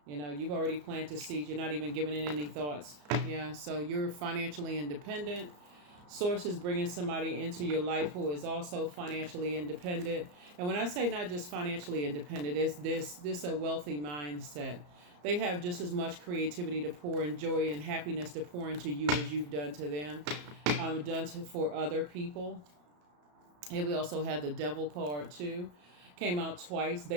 you've already planted seeds. You're not even giving it any thoughts. Yeah, so you're financially independent. Source is bringing somebody into your life who is also financially independent. And when I say not just financially independent, it's this a wealthy mindset. They have just as much creativity to pour and joy and happiness to pour into you as you've done to them, for other people. And we also have the Devil card too. Came out twice.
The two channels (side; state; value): left; late; 34 ms